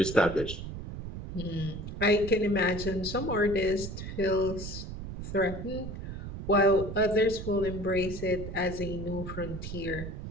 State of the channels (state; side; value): noise; right; rumble, 8 dB below the sound